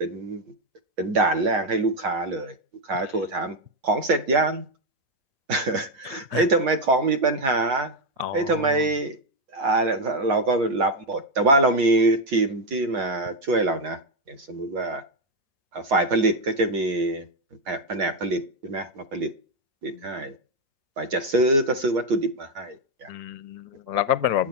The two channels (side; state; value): left; late; 7.3 ms